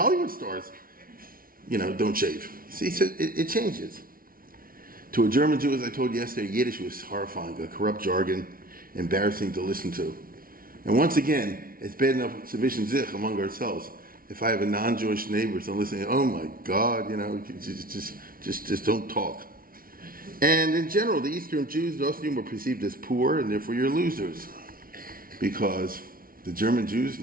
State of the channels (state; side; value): late; left; 0.42 ms